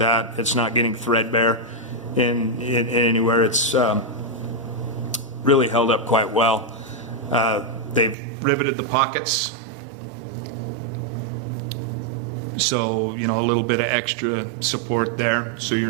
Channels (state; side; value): drops out; left; at 8.2 s